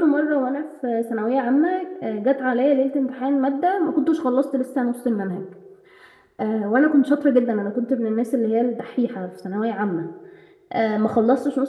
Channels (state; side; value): identical; both; correlation 1.00